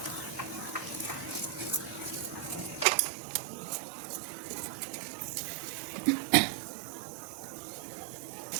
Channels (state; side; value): drops out; left; at 2.9 s